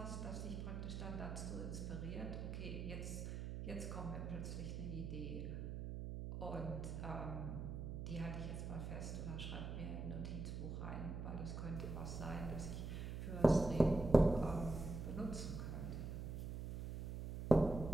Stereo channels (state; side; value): noise; right; hum, 5 dB below the sound